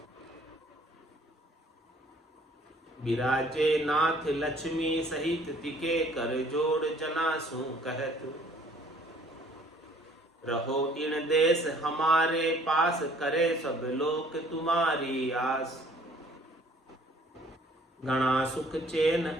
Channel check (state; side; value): normal; both; correlation 0.57